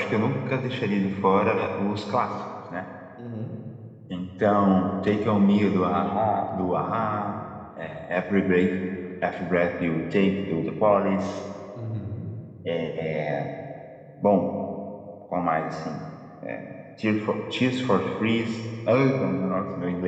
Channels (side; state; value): both; identical; correlation 1.00